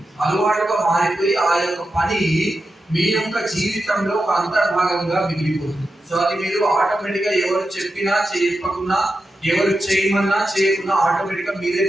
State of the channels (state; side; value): normal; both; correlation 0.89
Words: అలవాటుగా మారిపోయి ఆ యొక్క పని మీ యొక్క జీవితంలో ఒక అంతర్భాగంగా మిగిలిపోతుంది. సో అది మీరు ఆటోమేటిక్ గా ఎవరు చెప్పినా చెప్పకున్నా, ఎవరు చేయమన్నా చేయకున్నా ఆటోమేటిక్ గా మీరే